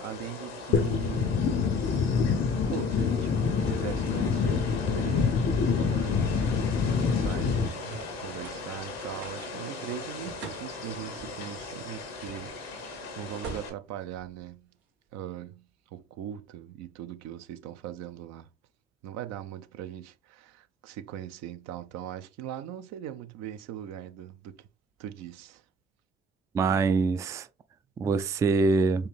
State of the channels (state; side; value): normal; both; correlation 0.49